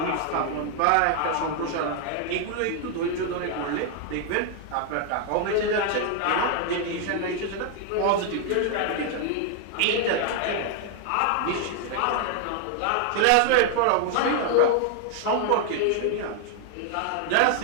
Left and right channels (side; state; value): both; different; correlation 0.00